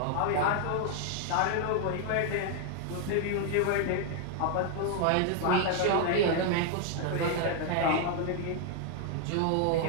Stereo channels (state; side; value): different; both; correlation 0.00